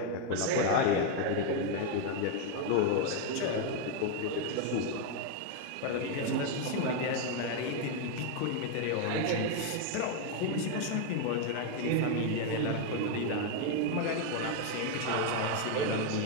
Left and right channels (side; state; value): both; different; correlation 0.01